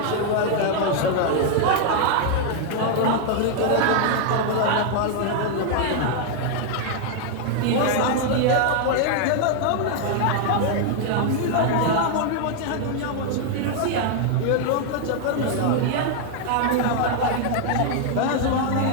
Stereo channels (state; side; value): different; both; correlation 0.00